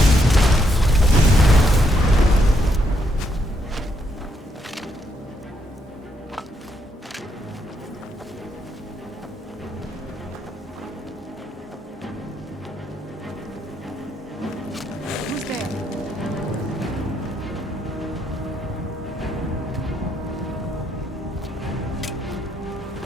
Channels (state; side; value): normal; both; correlation 0.76